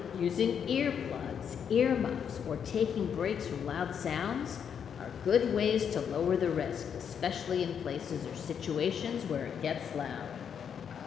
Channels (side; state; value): right; quieter; 7.7 dB